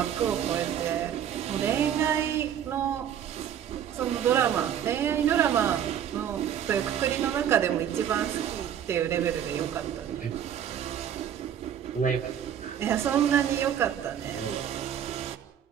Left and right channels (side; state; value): left; quieter; 9.6 dB